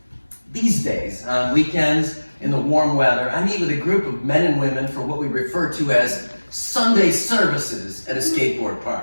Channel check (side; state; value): both; inverted; correlation -1.00